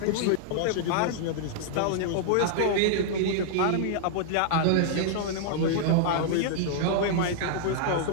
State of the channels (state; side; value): different; both; correlation -0.01